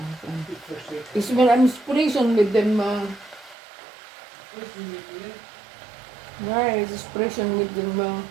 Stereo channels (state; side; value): drops out; left; at 3.6 s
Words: Is my inspiration with them, guys, inspiration with them,